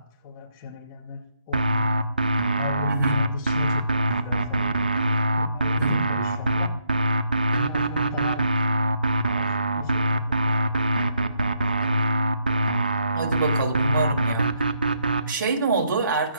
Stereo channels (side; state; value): both; inverted; correlation -0.75